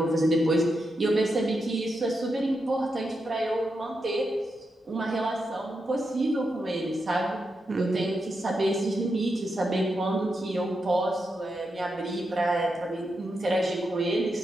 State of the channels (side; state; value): both; normal; correlation 0.85